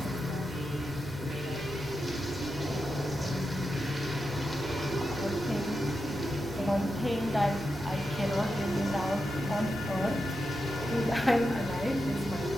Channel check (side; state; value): left; noise; rumble, 16 dB below the sound